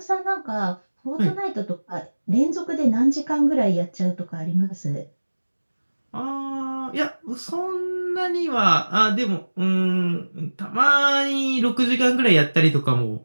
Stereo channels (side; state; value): both; inverted; correlation -1.00